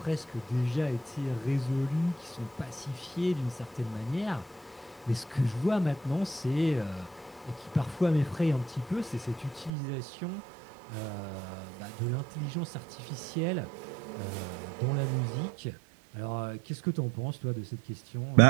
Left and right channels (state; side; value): drops out; left; at 9.7 s